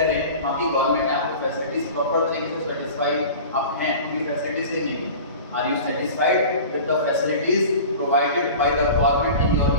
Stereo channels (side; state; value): both; inverted; correlation -0.37